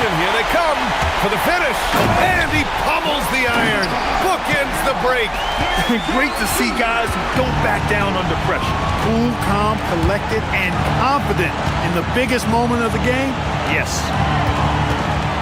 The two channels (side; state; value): both; identical; correlation 1.00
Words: here they come for the finish. And he pummels the iron. Bookends the break. Great to see guys who don't back down under pressure. Cool, calm, collected, and confident in the biggest moment of the game. Yes.